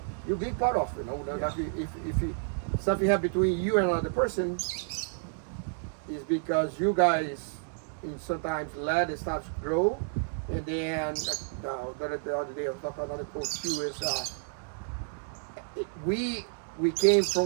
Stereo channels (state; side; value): silent; left; digital silence